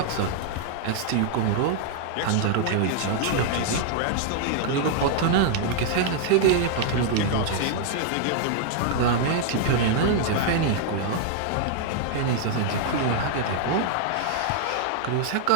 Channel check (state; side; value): different; both; correlation 0.00